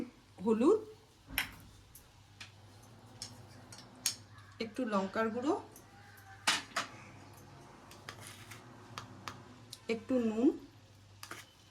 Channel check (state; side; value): identical; both; correlation 1.00